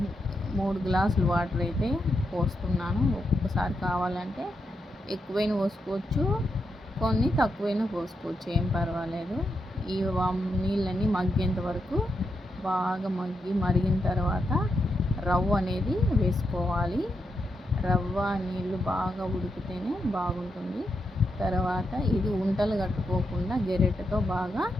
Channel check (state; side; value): normal; both; correlation 0.84